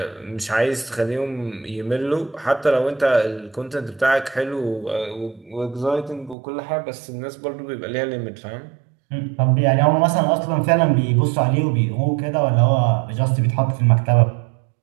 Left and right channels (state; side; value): drops out; left; at 6.4 s